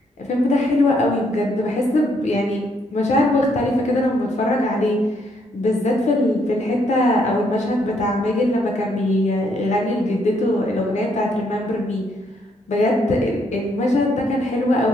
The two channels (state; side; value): normal; both; correlation 0.72